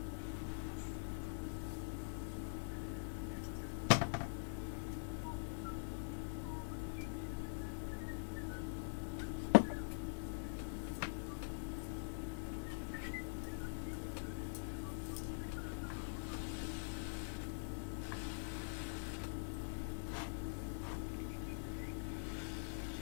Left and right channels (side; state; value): right; silent; digital silence